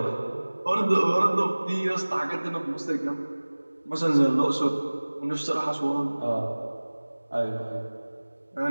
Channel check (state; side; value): inverted; both; correlation -1.00